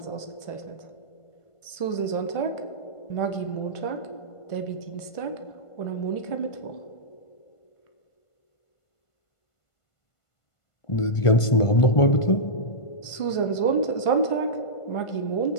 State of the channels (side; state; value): right; late; 1.5 ms